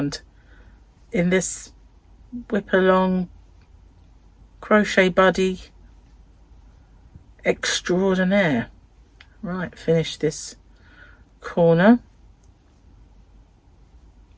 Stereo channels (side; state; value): both; identical; correlation 1.00